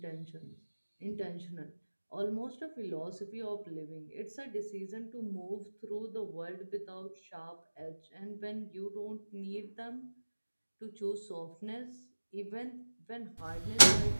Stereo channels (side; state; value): both; inverted; correlation -1.00